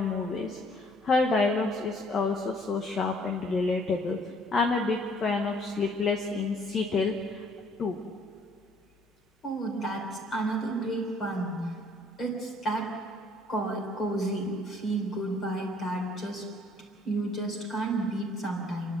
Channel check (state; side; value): normal; both; correlation 0.61